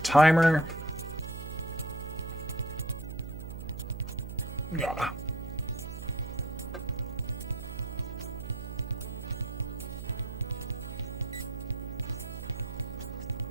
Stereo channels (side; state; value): right; noise; hum, 8 dB below the sound